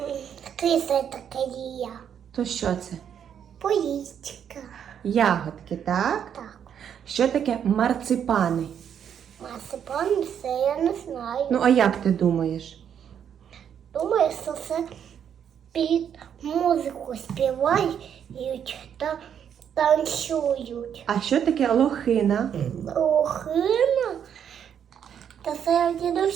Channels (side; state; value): left; quieter; 8.6 dB